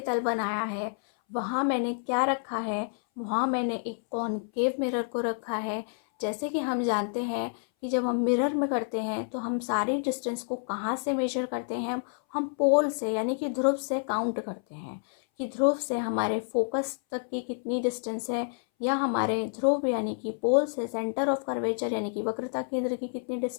तल बनाया है। वहाँ मैंने क्या रखा है, वहाँ मैंने एक कॉनकेव मिरर को रखा है। जैसे कि हम जानते हैं कि जब हम मिरर में करते हैं तो हम सारी डिस्टेंस को कहाँ से मेजर करते हैं, हम पोल से यानी कि ध्रुव से काउंट करते हैं कि ध्रुव से हमारे फोकस तक की कितनी डिस्टेंस है, या हमारे ध्रुव यानी कि पोल से सेंटर ऑफ कर्वेचर यानी कि वक्रता केंद्र की कितनी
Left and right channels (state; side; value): silent; right; 59 dB below the other